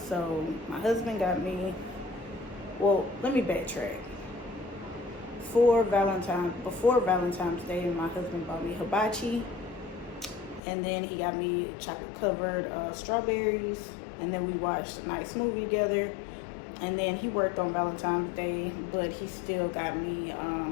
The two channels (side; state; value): right; drops out; at 10.6 s